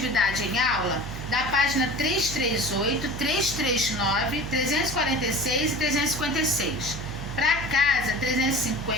em aula da página 338, 339, 346 e 356. Para casa,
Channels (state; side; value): noise; right; hum, 9 dB below the sound